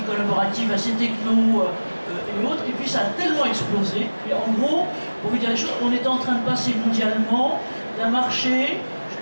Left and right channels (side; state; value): both; inverted; correlation -1.00